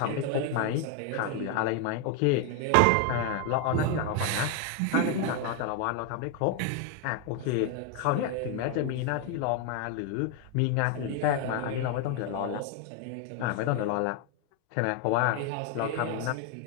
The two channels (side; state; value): both; different; correlation 0.01